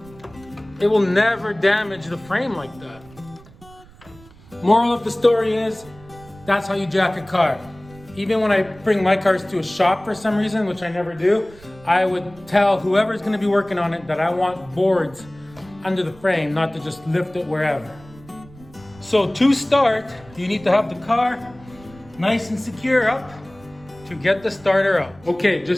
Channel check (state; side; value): noise; right; rumble, 23 dB below the sound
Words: It will never damage the frame like that. Moral of the story is, that's how you jack a car. Even when I bring my cars to a shop for some reason, which I never do, I would tell whoever's gonna be working on it that I want boards under the frame, not to just lift it wherever. So to start, you need to have the car nice and secure up to get the starter out. Okay,